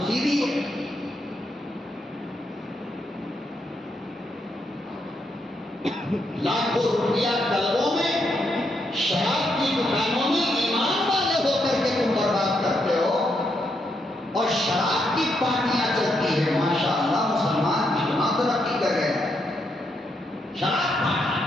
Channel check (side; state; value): both; normal; correlation 0.79